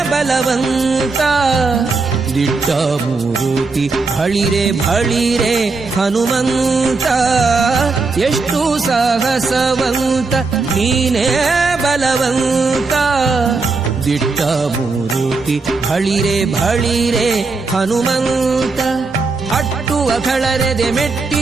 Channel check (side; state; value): left; quieter; 4.0 dB